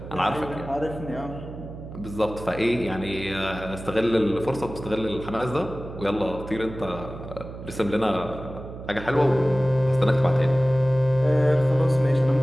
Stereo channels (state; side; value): noise; right; hum, 12 dB below the sound